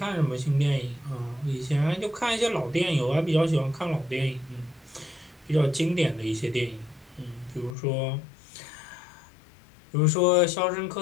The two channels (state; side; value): drops out; right; at 7.8 s